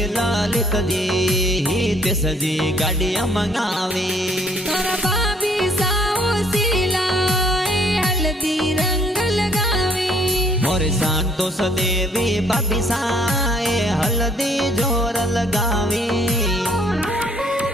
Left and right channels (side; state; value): both; normal; correlation 0.63